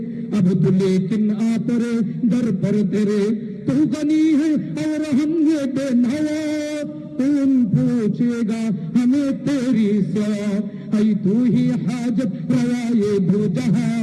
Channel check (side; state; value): both; identical; correlation 1.00